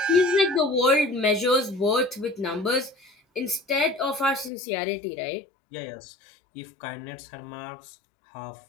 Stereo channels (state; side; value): drops out; right; at 4.5 s